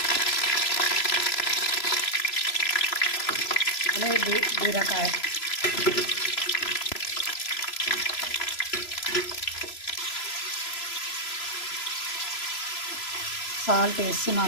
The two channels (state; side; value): late; right; 3.0 ms